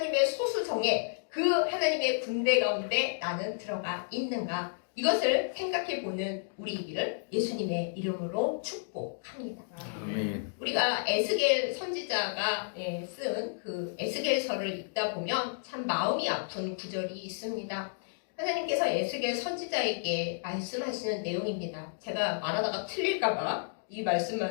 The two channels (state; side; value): silent; right; digital silence